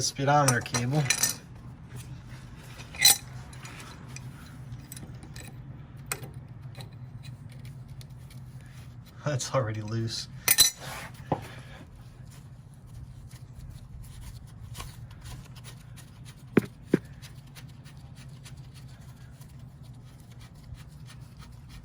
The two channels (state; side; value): identical; both; correlation 1.00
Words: speedometer cable. That's already loose.